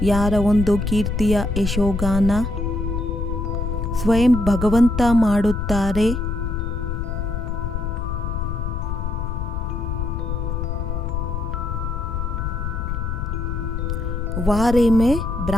ಯಾರ ಒಂದು ಕೀರ್ತಿಯ ಯಶೋಗಾನ ಸ್ವಯಂ ಭಗವಂತ ಮಾಡುತ್ತಾರೆ. ವಾರೆ ಮೇ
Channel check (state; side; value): noise; left; rumble, 2 dB below the sound